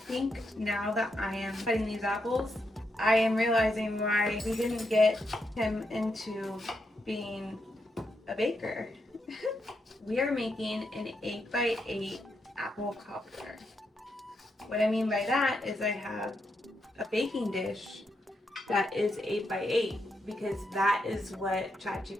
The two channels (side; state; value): both; normal; correlation 0.82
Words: think now that I am cutting these apples, I am realizing why we didn't get him into being a baker. We are making an 8x8 apple cobbler. What I mean by that is I have a baking dish that is 8x8 because that is what